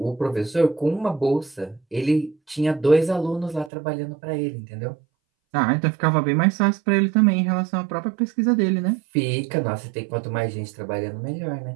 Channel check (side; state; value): left; drops out; at 3.7 s